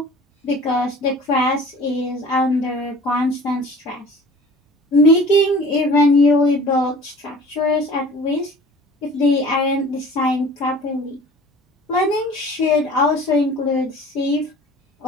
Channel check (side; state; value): both; normal; correlation 0.45